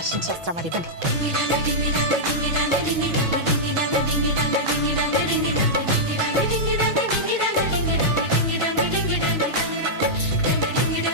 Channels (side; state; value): left; late; 6.1 ms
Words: ಅರ್ಶಿನ ಶಾಸ್ತ್ರ ಮಾಡಿ ಬನ್ನಿ.